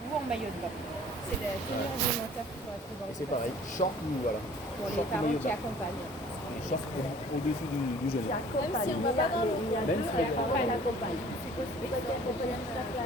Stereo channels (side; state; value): both; normal; correlation 0.51